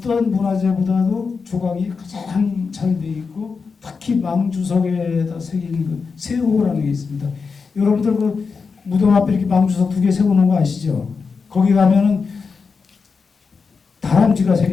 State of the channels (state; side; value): quieter; right; 5.1 dB